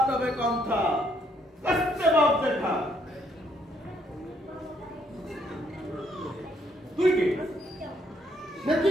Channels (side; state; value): both; normal; correlation 0.70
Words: তবে কণ্ঠা কষ্টে বাপ দেখা। তুই কে? নাকি